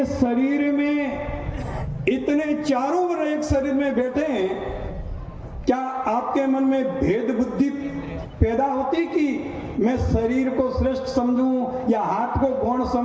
शरीर में इतने चारों वर्ण एक शरीर में बैठे हैं, क्या आपके मन में भेद बुद्धि पैदा होती कि मैं शरीर को श्रेष्ठ समझूं या हाथ को गौण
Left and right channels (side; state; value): both; identical; correlation 1.00